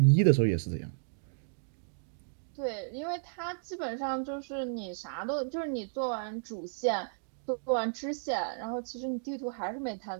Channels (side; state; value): left; silent; digital silence